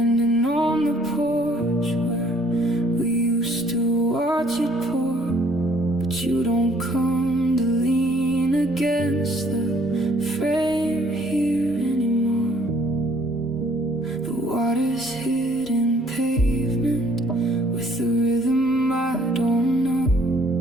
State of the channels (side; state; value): both; normal; correlation 0.62